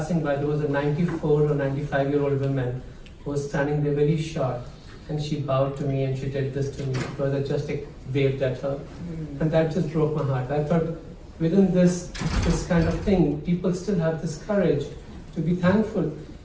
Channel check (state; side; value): identical; both; correlation 1.00